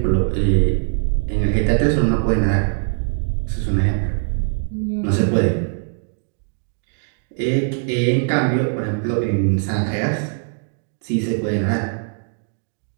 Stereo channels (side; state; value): left; silent; digital silence